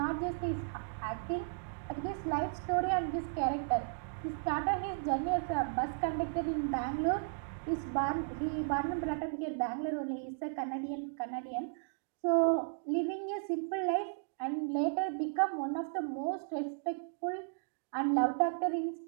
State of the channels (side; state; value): left; silent; digital silence